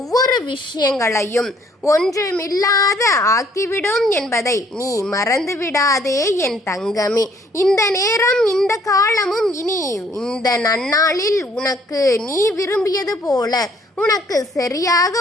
விஷயங்களையும் ஒன்றுமில்லாத ஆக்கிவிடும் என்பதை நீ மறந்துவிடாதே என் தங்கமே. இந்த நேரம் இந்த காலமும் இனி இந்த நன்னாளில் உனக்கு நீ விரும்பியது போல உனக்கு சரியாக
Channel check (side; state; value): both; normal; correlation 0.63